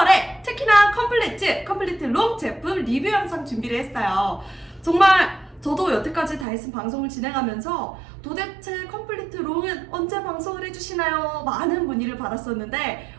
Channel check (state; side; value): drops out; left; at 6.5 s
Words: 특히나 컴플리트 롱 제품 리뷰 영상 준비를 했어요. 정말 저도 여태까지 다이슨 방송을 진행하면서 도대체 컴플리트 롱은 언제 방송을 해주시나요? 많은 문의를 받았었는데